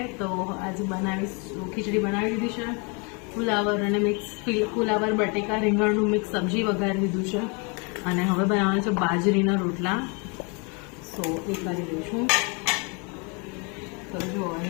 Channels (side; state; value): right; quieter; 33.0 dB